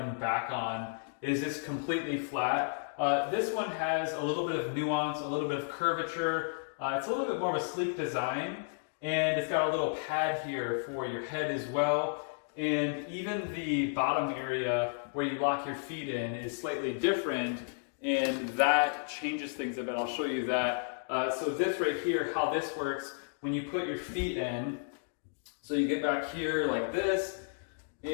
back on is just completely flat. This one has a little bit of nuance, a little bit of curvature. It's a little bit more of a sleek design. And it's got a little pad here for your head as well. And even the bottom area where you lock your feet in is slightly different, and that changes things a bit. I'll show you that. So this right here, how this works, when you put your feet in, so you get back here like this,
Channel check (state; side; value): silent; right; digital silence